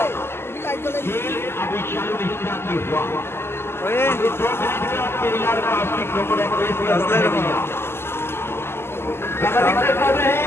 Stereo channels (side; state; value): right; late; 0.12 ms